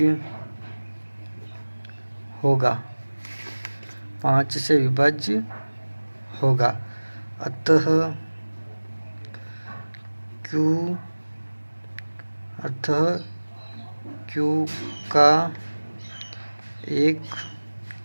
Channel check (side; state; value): both; inverted; correlation -1.00